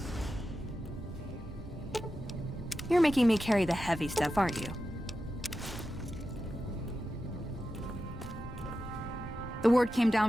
You're making me carry the heavy stuff, aren't you? The word came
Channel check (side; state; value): both; normal; correlation 0.91